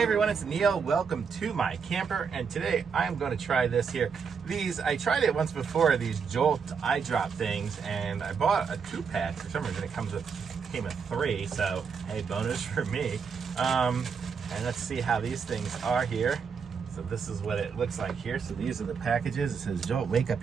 Hi everyone, it's Neil. Welcome to my camper, and today I'm going to try this here. I tried it once before, these Jolt eye drop things, and I bought a 2-pack. For some reason it came with 3, so hey, bonus for me. And let's see how these things are here. So this is what it looks like here. So these are the packages. It says Jolt, wake up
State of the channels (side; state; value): left; quieter; 6.1 dB